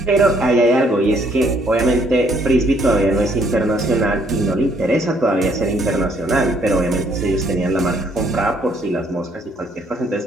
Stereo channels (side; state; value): both; normal; correlation 0.66